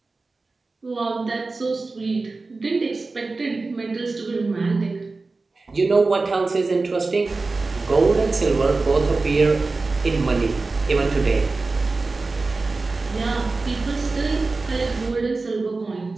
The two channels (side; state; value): left; quieter; 3.7 dB